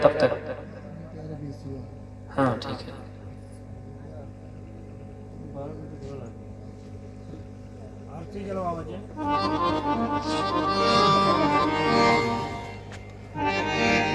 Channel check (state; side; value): identical; both; correlation 1.00